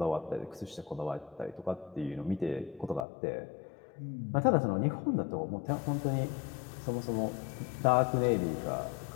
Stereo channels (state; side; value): drops out; right; at 3.1 s